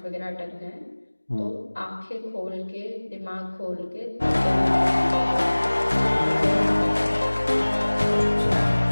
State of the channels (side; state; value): both; inverted; correlation -1.00